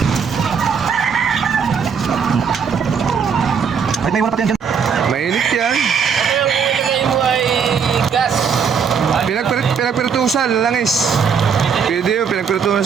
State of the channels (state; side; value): quieter; left; 6.5 dB